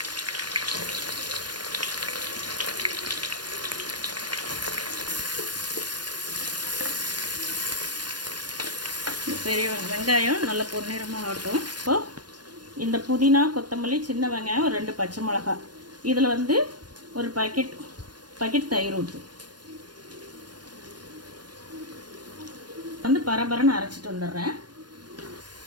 பெரிய வெங்காயம் நல்ல பொன்னிறமாக ஆகட்டும். இப்போது இந்த புதினா, கொத்தமல்லி, சின்ன வெங்காயம், ஒரு 2 பச்சை மிளகாய், இதில் வந்து ஒரு பாக்கெட் தயிர் ஊற்று வந்து பரபரன்னு அரைச்சிட்டு வந்துடுறேன்.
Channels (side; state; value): left; late; 0.70 ms